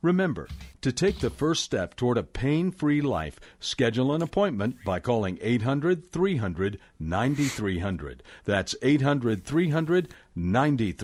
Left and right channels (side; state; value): both; identical; correlation 1.00